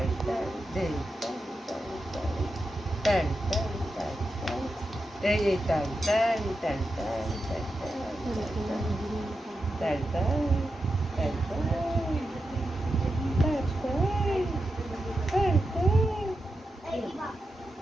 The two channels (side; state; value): both; normal; correlation 0.89